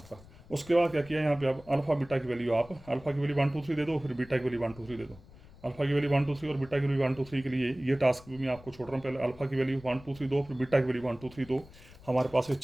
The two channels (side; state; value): left; noise; rumble, 21 dB below the sound